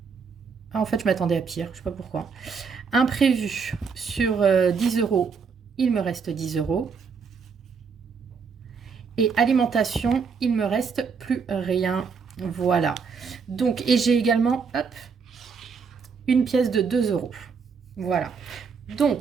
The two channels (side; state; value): left; quieter; 5.6 dB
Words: Ah, en fait, je m'attendais à pire, je ne sais pas pourquoi. Imprévu sur 10 euros, il me reste 10 euros. Et alimentation, il me reste plus rien. Voilà. Donc, et j'ai également, hop, une pièce de 2 euros. Voilà.